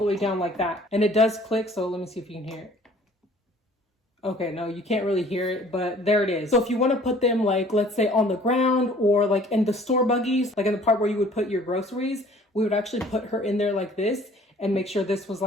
way down like that. And it does click, so let me see if you can hear it. Okay, no, you can't really hear it, but there it is. So if you want to put them like, let's say on the ground or like in the store buggies, like in the part where you would put your groceries, we would actually put her in there like this and make sure this was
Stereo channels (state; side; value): normal; both; correlation 0.53